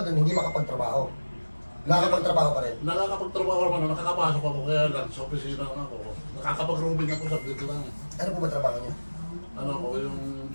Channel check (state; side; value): inverted; both; correlation -1.00